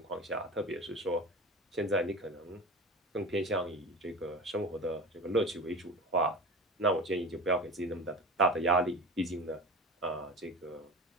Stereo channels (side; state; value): both; normal; correlation 0.31